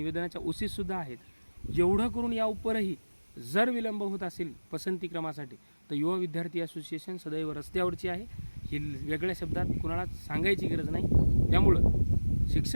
ओसीसुद्धा आहेत. एवढं करून या उपरही जर विलंब होत असेल पसंतीक्रमासाठी तर युवा विद्यार्थी असोसिएशन सदैव रस्त्यावरची आहे, ही वेगळ्या शब्दात कुणाला सांगायची गरज नाही. त्यामुळं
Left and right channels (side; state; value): both; inverted; correlation -1.00